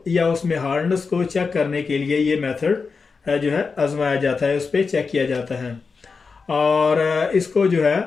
या उसमें हार्डनेस को चेक करने के लिए ये मेथड जो है आजमाया जाता है, उस पर चेक किया जाता है। और इसको जो है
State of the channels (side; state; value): right; quieter; 4.9 dB